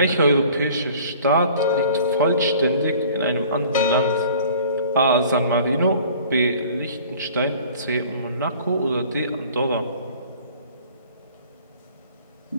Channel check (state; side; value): inverted; both; correlation -0.49